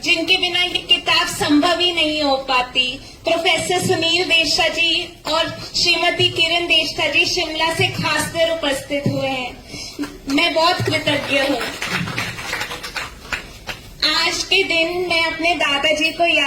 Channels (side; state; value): both; identical; correlation 1.00